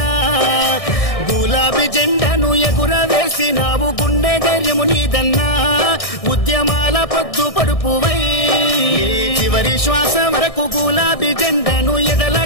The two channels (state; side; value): late; right; 1.6 ms